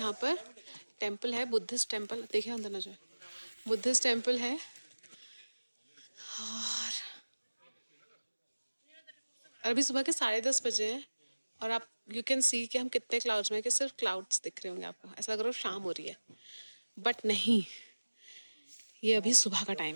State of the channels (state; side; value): inverted; both; correlation -1.00